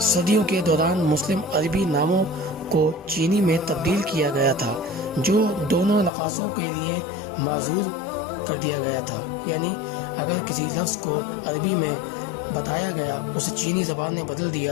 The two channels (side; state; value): right; drops out; at 6.1 s